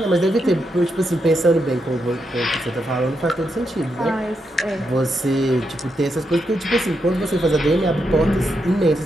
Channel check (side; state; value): both; normal; correlation 0.83